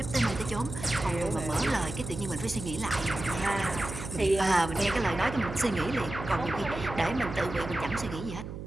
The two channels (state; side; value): noise; right; hum, 9 dB below the sound